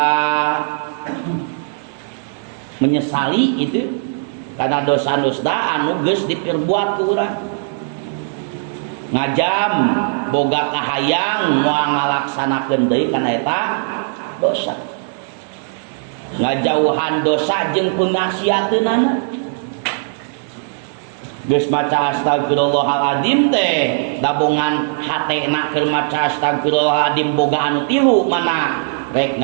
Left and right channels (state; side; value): silent; left; 66 dB below the other